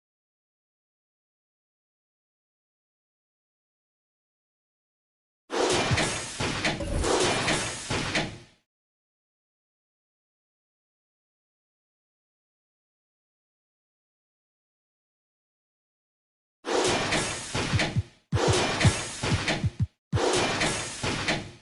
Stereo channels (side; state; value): both; identical; correlation 1.00